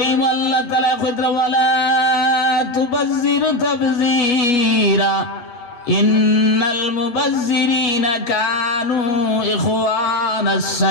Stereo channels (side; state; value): right; late; 8.3 ms